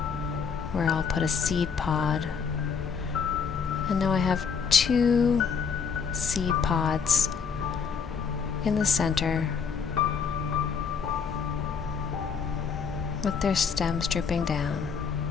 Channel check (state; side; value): quieter; right; 6.1 dB